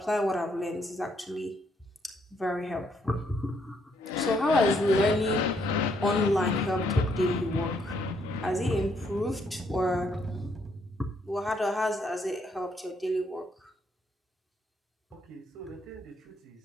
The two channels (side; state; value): both; normal; correlation 0.72